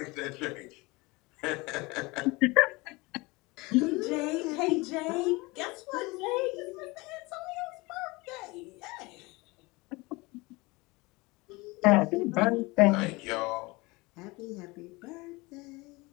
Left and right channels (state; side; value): quieter; right; 23.9 dB